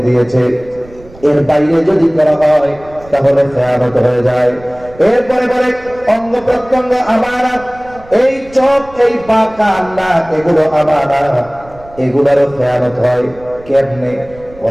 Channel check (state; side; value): noise; right; rumble, 22 dB below the sound